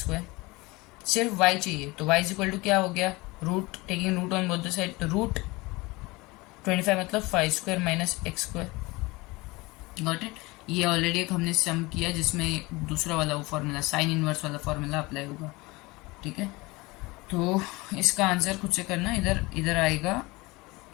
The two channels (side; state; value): right; quieter; 22.9 dB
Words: सिर्फ y चाहिए। तो y इज इक्वल टू क्या हो गया, root taking root on both the side, तो रूट 25 मतलब 5² माइनस x², गॉट इट। ये ऑलरेडी एक हमने सम किया जिसमें दूसरा वाला वो फॉर्मूला साइन इनवर्स वाला फॉर्मूला अप्लाई होगा, ठीक है। तो इसका आंसर खुद से करना, इधर आएगा